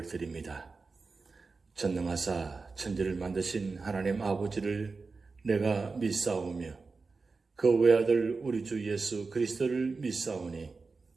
드립니다. 전능하사 천지를 만드신 하나님 아버지를 내가 믿사오며 그 외아들 우리 주 예수 그리스도를 믿사오니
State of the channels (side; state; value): left; quieter; 4.2 dB